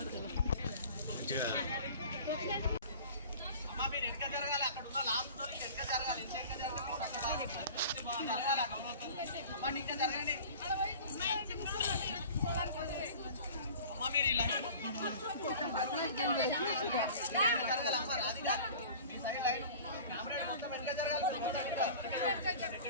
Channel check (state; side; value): inverted; both; correlation -0.42